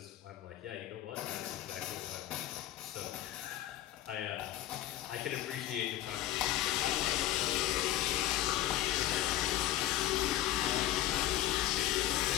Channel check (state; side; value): quieter; right; 13.6 dB